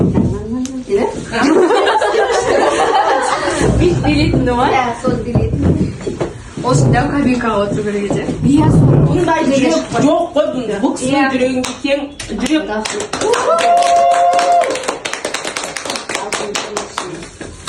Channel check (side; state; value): both; identical; correlation 1.00